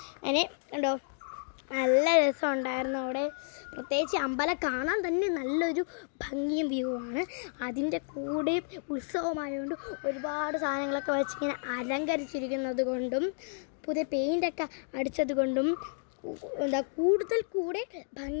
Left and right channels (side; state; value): right; silent; digital silence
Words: അതിന് കണ്ടോ നല്ല രസമുണ്ടായിരുന്നു അവിടെ. പ്രത്യേകിച്ച് അമ്പലം കാണാൻ തന്നെ നല്ലൊരു ഭംഗിയും വ്യൂ ആണ്. അതിൻ്റെ കൂടെ ഉത്സവമായതുകൊണ്ട് ഒരുപാട് സാധനങ്ങളൊക്കെ വെച്ചിങ്ങനെ അലങ്കരിച്ചിരിക്കുന്നത് കൊണ്ടും പുതിയ പെയിൻ്റൊക്കെ അടിച്ചത് കൊണ്ടും കൂടുതൽ കൂടെ